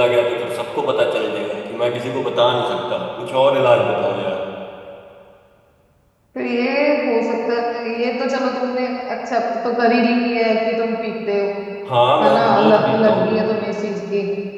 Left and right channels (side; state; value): both; identical; correlation 1.00